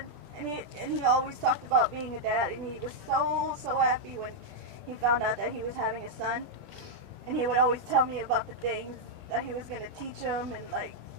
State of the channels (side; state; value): left; late; 20 ms